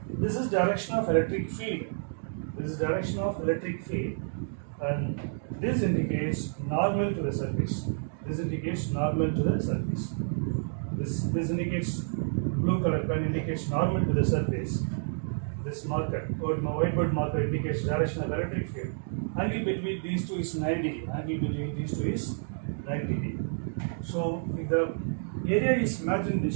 this is direction of electric field. This is direction of electric field, and this indicates normal to the surface. This indicates normal to the surface. This indicates, blue color pen indicates normal to the surface. This marker, whiteboard marker, indicates direction of electric field. Angle between these two is 90 degree. Angle between these two is 90 degree. So if the area is imagined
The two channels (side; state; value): left; silent; digital silence